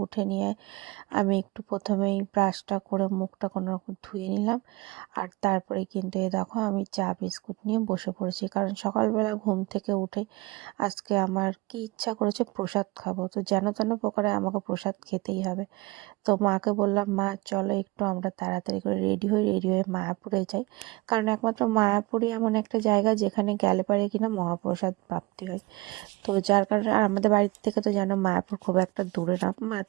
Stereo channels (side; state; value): left; quieter; 22.9 dB